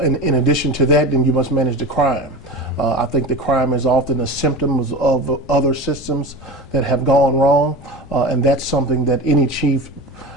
in addition to that, then you must manage the crime. I think the crime is often a symptom of other systems that have gone wrong, and that's something that any chief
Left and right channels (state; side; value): normal; both; correlation 0.30